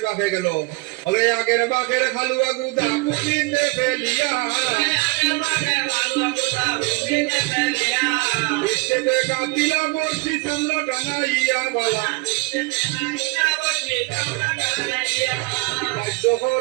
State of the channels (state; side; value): quieter; left; 25.3 dB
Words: বাঘে গেল। ওরে আগের বাঘের খালুয়া গুদা পুলিতে ফেলিয়া, বৃষ্টিতে কাটিলা বসি সামনে টানাইয়া বালা।